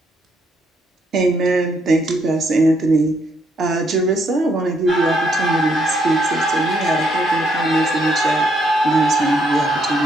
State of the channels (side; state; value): both; normal; correlation 0.73